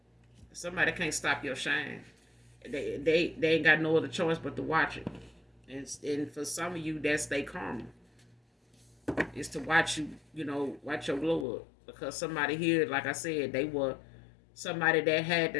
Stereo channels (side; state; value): right; drops out; at 11.5 s